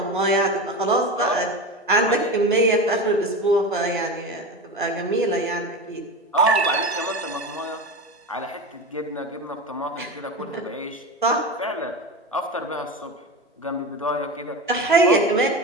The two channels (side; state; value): both; normal; correlation 0.25